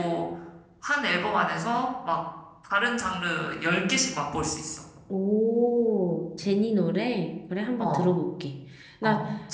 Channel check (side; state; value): both; identical; correlation 1.00